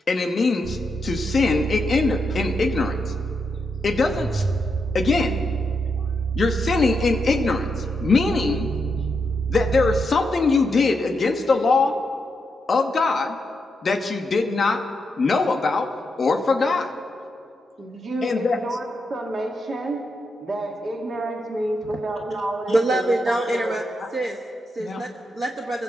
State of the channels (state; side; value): normal; both; correlation 0.83